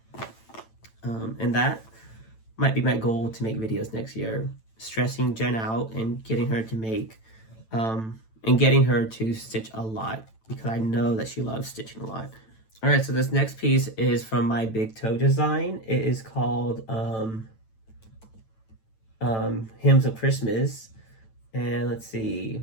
And that might be my goal, to make videos next year, stressing Jen out and getting her to make, and getting her to stitch a lot, because I know that she loves stitching a lot. All right, so this next piece is from my big toe design. It is called Hymns of Christmas. And let's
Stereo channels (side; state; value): right; late; 9.0 ms